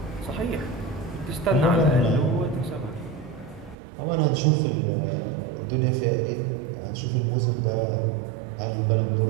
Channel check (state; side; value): drops out; left; at 3.8 s